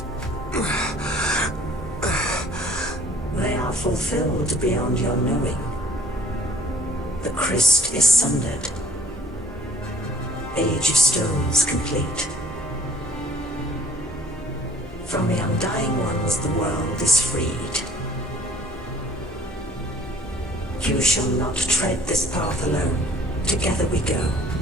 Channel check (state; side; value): normal; both; correlation 0.55